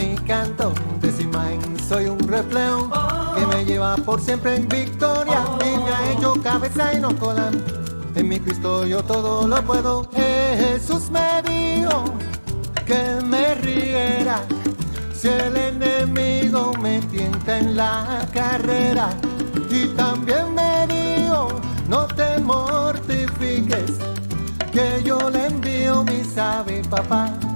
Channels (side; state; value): both; inverted; correlation -1.00